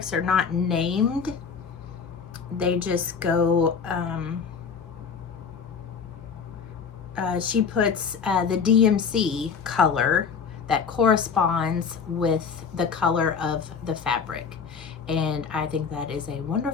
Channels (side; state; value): right; quieter; 6.1 dB